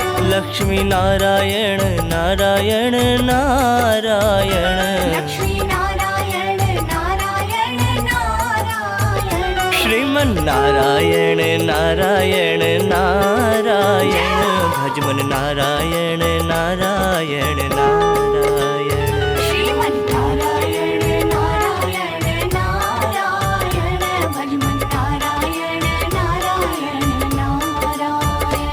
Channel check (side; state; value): both; identical; correlation 1.00